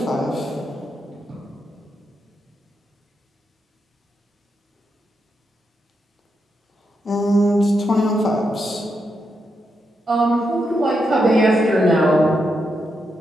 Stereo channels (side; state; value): both; normal; correlation 0.83